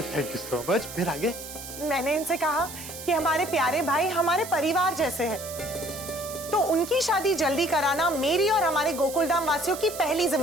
Thank you so much. फिर आगे? मैंने इनसे कहा कि हमारे प्यारे भाई हमारे परिवार जैसे हैं, तो उनकी शादी जल्दी कराना मेरी और हमारे गोकुलधाम वासियों की पहली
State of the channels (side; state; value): right; noise; hiss, 11 dB below the sound